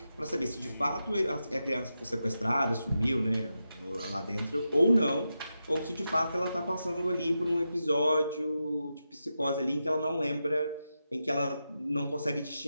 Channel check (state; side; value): inverted; both; correlation -0.88